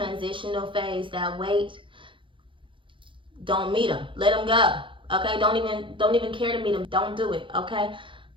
phase, that wait. Don't meet them. Let them go. Okay? Don't even care to meet them. Don't do it. Okay?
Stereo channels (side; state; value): left; late; 0.25 ms